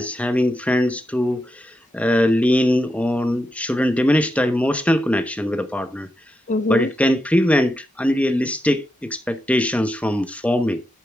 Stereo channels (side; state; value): both; normal; correlation 0.86